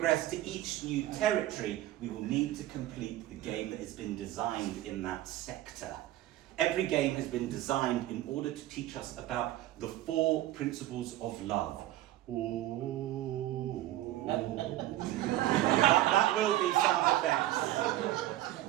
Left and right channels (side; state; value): left; quieter; 14.8 dB